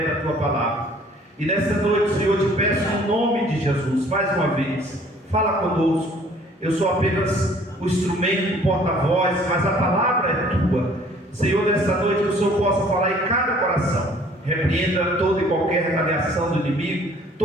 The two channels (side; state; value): both; normal; correlation 0.55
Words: da tua palavra. E nesta noite, Senhor, te peço no nome de Jesus, mais uma vez, fala conosco. Eu sou apenas o instrumento, o porta-voz, mas a palavra é tua. Senhor, nesta noite, que o Senhor possa falar em cada coração. Repreenda toda e qualquer retaliação do inimigo,